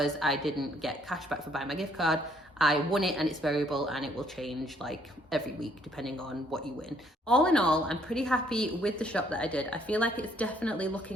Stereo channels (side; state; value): both; normal; correlation 0.67